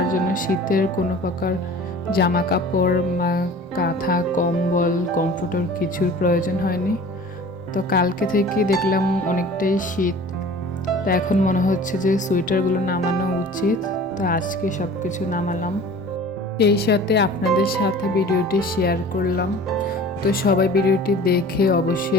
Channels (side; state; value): both; normal; correlation 0.43